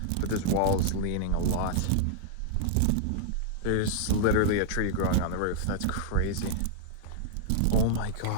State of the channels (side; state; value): both; different; correlation -0.01